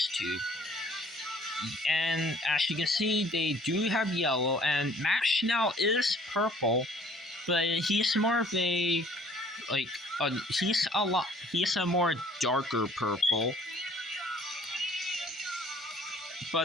2. And as you can see, they do have yellow, and Max Schnell is purple, but he's more of a he's a more darker purple.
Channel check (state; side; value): normal; both; correlation 0.56